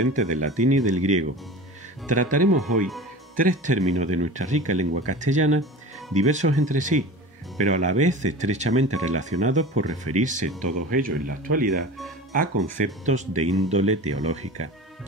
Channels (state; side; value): normal; both; correlation 0.35